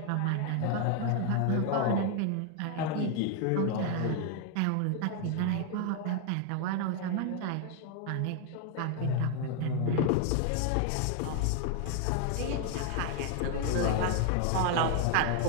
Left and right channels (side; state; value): both; different; correlation 0.00